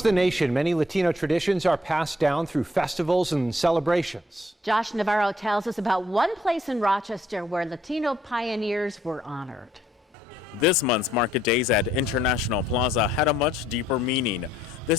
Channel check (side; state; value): both; normal; correlation 0.68